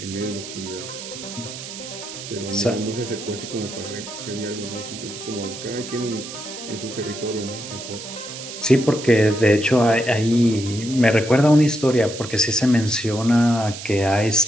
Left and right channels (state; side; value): noise; right; hiss, 11 dB below the sound